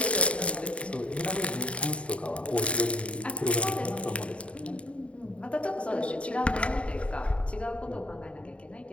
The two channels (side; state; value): right; late; 0.062 ms